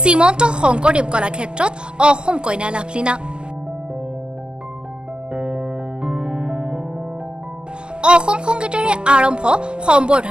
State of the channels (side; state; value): left; late; 0.052 ms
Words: শংকৰদেৱ কলাক্ষেত্ৰত অসম কন্যা লাভলীনা। অসম সংগীতেৰে আৰম্ভ